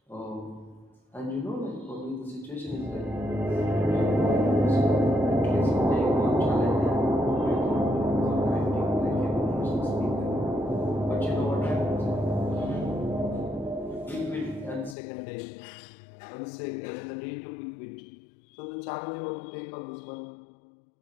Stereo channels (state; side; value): drops out; right; at 15.0 s